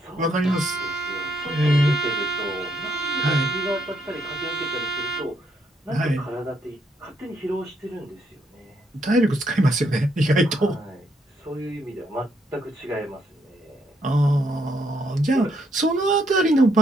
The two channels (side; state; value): both; normal; correlation 0.73